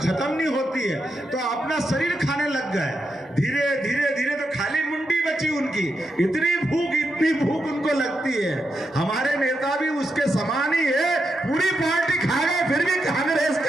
नहीं होती है, तो अपना शरीर खाने लग गए। धीरे धीरे धीरे तो खाली मुंडी बची उनकी। इतनी भूख उनको लगती है। हमारे नेता भी उसके समान ही है, पूरी पार्टी खा गए, फिर भी कांग्रेस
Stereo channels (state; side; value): normal; both; correlation 0.85